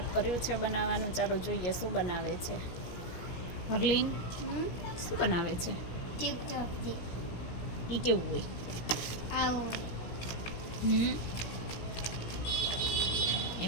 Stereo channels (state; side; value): late; right; 17 ms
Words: કર્યું છે બનાવવાનું. ચાલો જોઈએ શું બનાવે છે હરલીન. શું બનાવે છે? એ કેવું હોય?